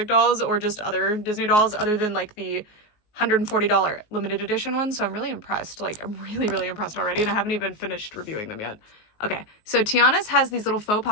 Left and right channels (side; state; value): right; late; 19 ms